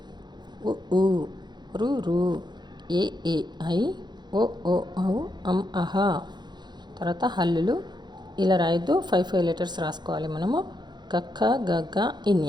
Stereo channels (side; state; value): left; late; 0.21 ms